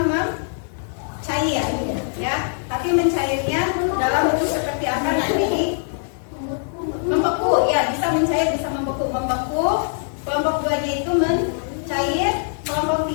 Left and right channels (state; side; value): silent; right; digital silence